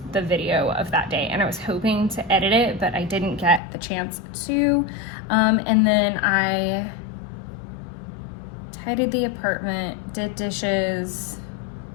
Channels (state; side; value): drops out; right; at 3.6 s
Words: the video of that day, and I was hoping to edit it, but I didn't get the chance to. And then I tidied the apartment, did dishes,